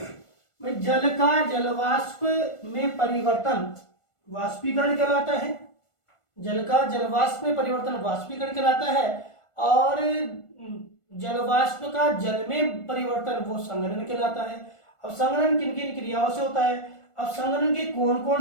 जल का जलवाष्प में परिवर्तन वाष्पीकरण कहलाता है, जल का जलवाष्प में परिवर्तन वाष्पीकरण कहलाता है, और जलवाष्प का जल में परिवर्तन वो संघनन कहलाता है। अब संघनन किन किन क्रियाओं से होता है, अब संघनन के कौन कौन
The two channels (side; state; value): right; late; 1.4 ms